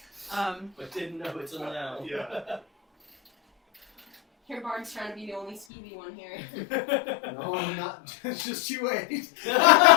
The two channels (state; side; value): drops out; right; at 5.7 s